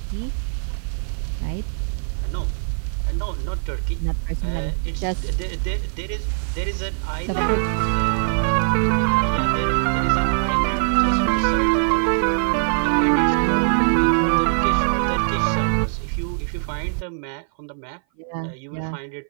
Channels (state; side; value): silent; left; 58 dB below the other